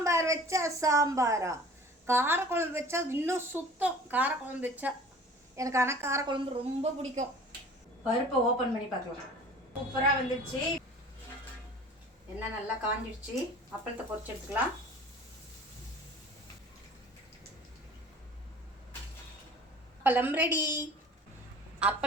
வச்சா சாம்பாரா, காரக்குழம்பு வச்சா இன்னும் சுத்தம். காரக்குழம்பு வச்சா எனக்கு ஆனால் காரக்குழம்பு ரொம்ப பிடிக்கும். பருப்பை ஓப்பன் பண்ணி பார்க்கலாம். சூப்பராக வந்துடுச்சு. எண்ணெய் நல்லா காஞ்சிடுச்சு. அப்பளத்தை பொரிச்சு எடுத்துக்கலாம். அப்பளம் ரெடி.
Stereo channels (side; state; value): both; normal; correlation 0.45